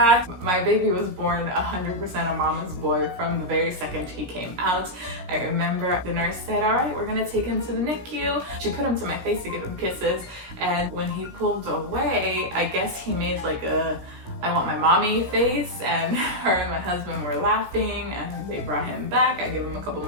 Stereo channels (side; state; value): left; late; 16 ms